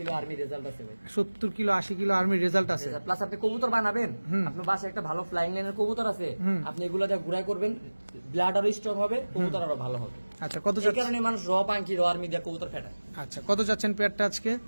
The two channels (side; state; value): both; inverted; correlation -1.00